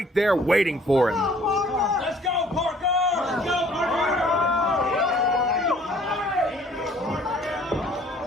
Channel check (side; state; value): both; normal; correlation 0.56